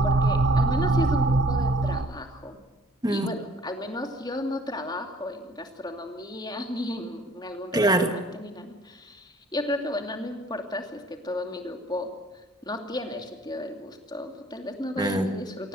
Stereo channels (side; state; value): both; normal; correlation 0.56